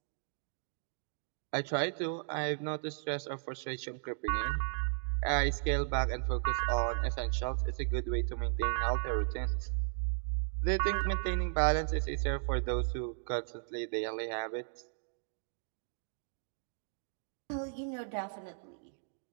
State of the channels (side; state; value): left; silent; digital silence